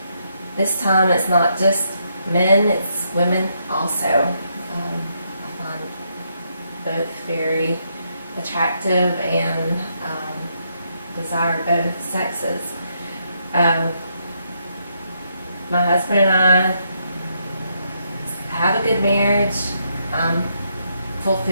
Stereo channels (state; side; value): inverted; both; correlation -0.77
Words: This time it's not just men, it's women also. I find both very attractive and desire both sexes. My husband and I have a good marriage. I'm